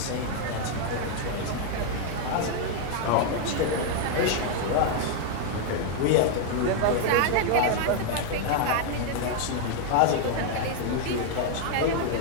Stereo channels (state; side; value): different; both; correlation 0.00